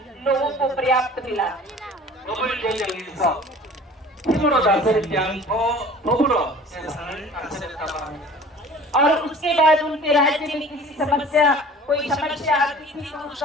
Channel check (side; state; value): both; normal; correlation 0.45